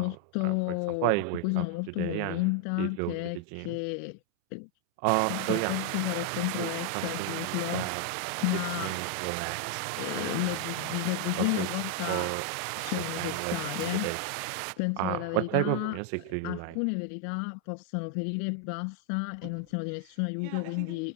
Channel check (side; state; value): both; different; correlation 0.00